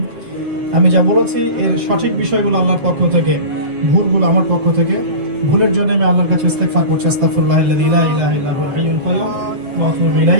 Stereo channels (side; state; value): left; late; 7.8 ms